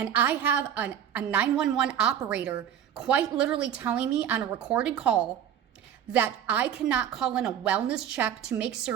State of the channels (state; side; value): quieter; left; 9.4 dB